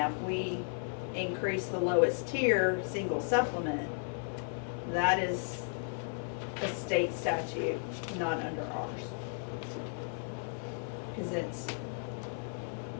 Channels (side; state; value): right; silent; 55 dB below the other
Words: if we increase the lowest tier, single supplement, that is a state statute, not under ours. Cause it's,